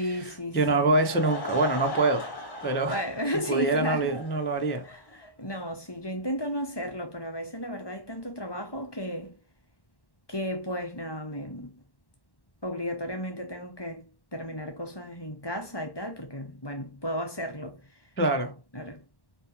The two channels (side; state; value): right; late; 1.2 ms